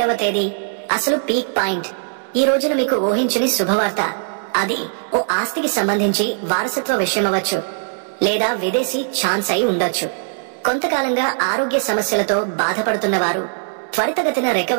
తేదీ అసలు పీక్ పాయింట్. ఈ రోజున మీకు ఊహించని శుభవార్త. అది ఓ ఆస్తికి సంబంధించి వారసత్వ విషయమవచ్చు, లేదా విదేశీ ఛాన్స్ అయి ఉండొచ్చు. కొంతకాలంగా ఆరోగ్య సమస్యలతో బాధపడుతున్న వారు త్వరితగతిన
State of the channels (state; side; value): silent; left; digital silence